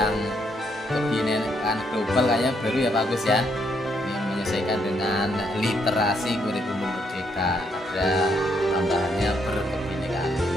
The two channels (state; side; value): normal; both; correlation 0.74